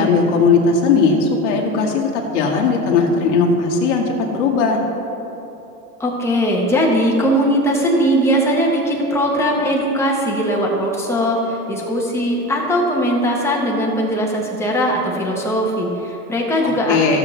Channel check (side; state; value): both; normal; correlation 0.31